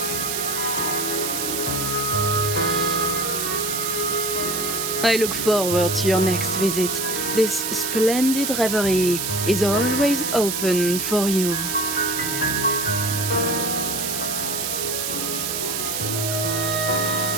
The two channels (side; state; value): right; noise; hiss, 2 dB below the sound